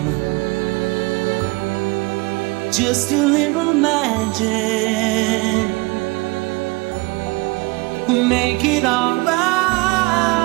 Just a little magic. Make it alright.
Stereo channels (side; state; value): left; quieter; 25.2 dB